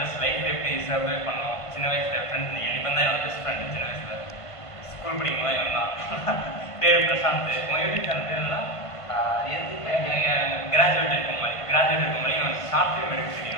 லைஃப் எப்படி சர்வை பண்ணோம். சின்ன வயசில் ஃப்ரெண்ட்ஸ் இவன் தான் என்னோட பெஸ்ட் ஃப்ரெண்டு. சின்ன வயசில் ஸ்கூல் படிக்கும் போது இவன் தான். பேர் பிரசாந்த். உங்கள் யூடியூப் சேனல் பேர் என்ன? கிராஜுவேட் இருக்கும் மாதிரி இவன் ஷார்ட் ஃபிலிம் எடுக்க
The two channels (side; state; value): right; late; 1.5 ms